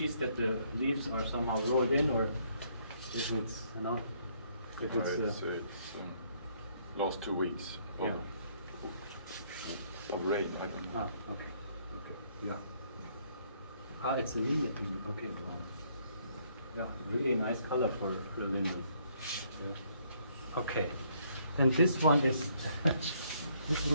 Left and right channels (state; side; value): inverted; both; correlation -0.68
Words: that the leaves are somehow rolled in, or if it's it's last 2 weeks of, of rain. I don't know. Okay, yeah. It's a linden. Okay, wow. Yeah, really nice color for the linden. Yeah. Okay, then this one is this